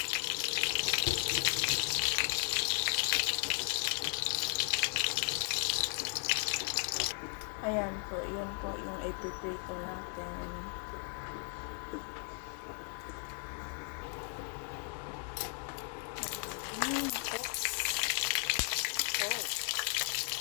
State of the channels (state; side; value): quieter; right; 39.5 dB